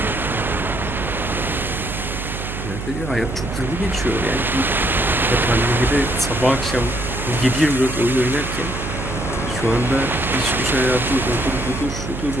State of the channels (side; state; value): right; noise; hum, 7 dB below the sound